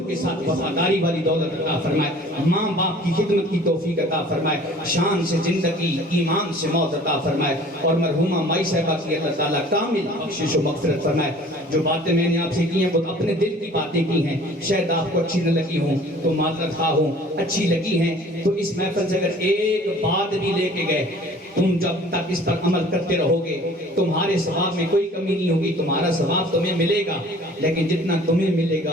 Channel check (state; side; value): normal; both; correlation 0.49